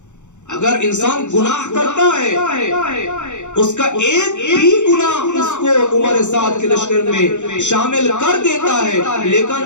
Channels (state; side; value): late; right; 0.84 ms